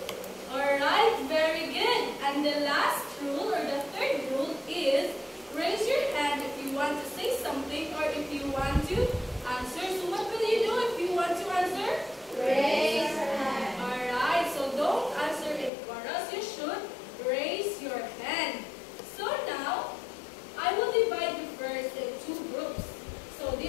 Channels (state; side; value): drops out; right; at 15.7 s